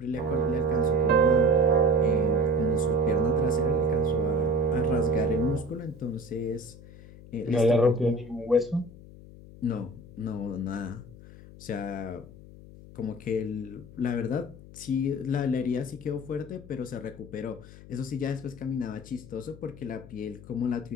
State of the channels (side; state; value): left; noise; hum, 18 dB below the sound